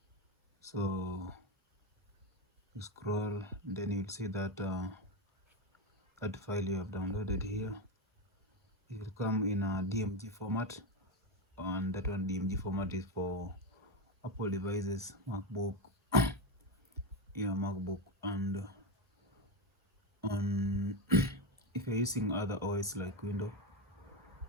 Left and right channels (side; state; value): both; normal; correlation 0.13